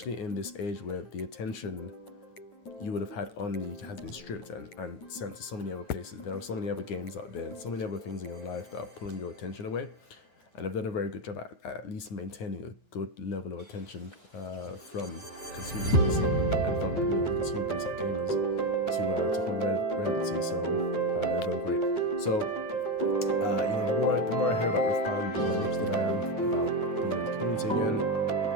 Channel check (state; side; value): late; right; 9.4 ms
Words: in this age where the attention you would have had on League has been stripped and sent to so many other places. There are so many other games out there, so many other things in your life that are pulling your attention away. And they've done a very good job at least maintaining a good level of attention from consumers and from the consumer base of gamers to hold relevancy. So they've done great. So the more I hear about Riftbound, the more interested I am about being in the community again.